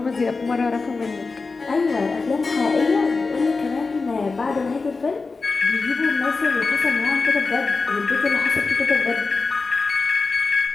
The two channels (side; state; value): right; quieter; 4.1 dB